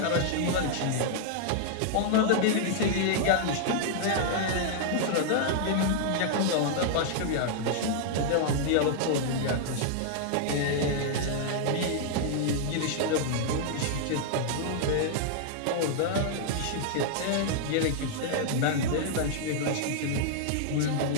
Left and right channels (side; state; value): both; different; correlation -0.01